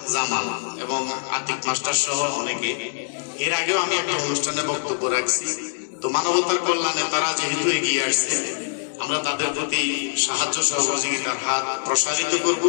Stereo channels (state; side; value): silent; right; 63 dB below the other